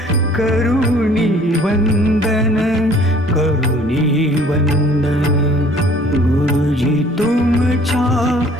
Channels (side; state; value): both; normal; correlation 0.55